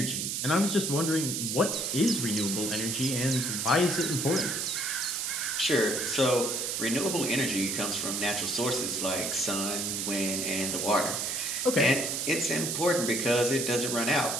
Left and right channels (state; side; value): noise; right; hiss, 1 dB below the sound